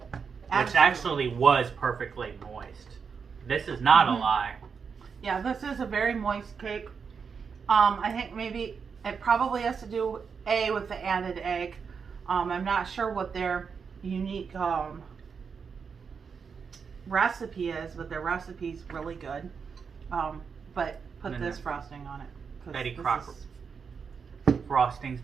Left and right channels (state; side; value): quieter; left; 6.0 dB